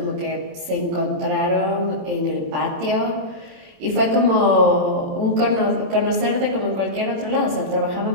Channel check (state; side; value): late; left; 27 ms